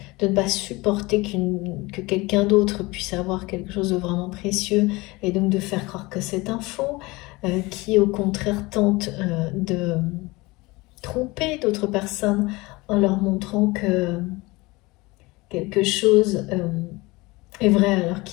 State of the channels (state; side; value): quieter; right; 22.7 dB